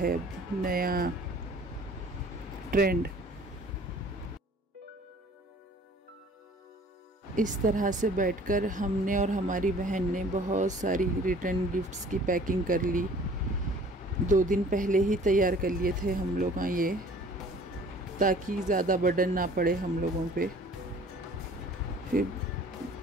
नया ट्रेंड। इस तरह से बैठकर हमने और हमारी बहन ने बहुत सारी रिटर्न गिफ्ट्स की पैकिंग कर ली। 2 दिन पहले ही तैयार कर लिए थे हम लोग ये, ताकि ज़्यादा बर्डन ना पड़े हम लोगों पे। फिर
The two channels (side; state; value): both; normal; correlation 0.50